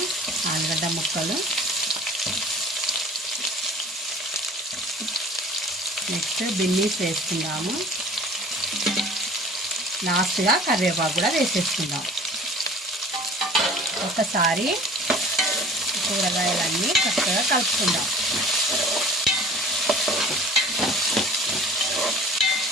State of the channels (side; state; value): both; normal; correlation 0.45